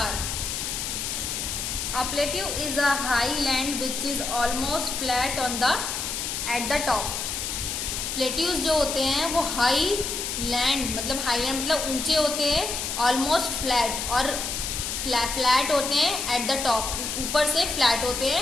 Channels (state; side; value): noise; left; hiss, 3 dB below the sound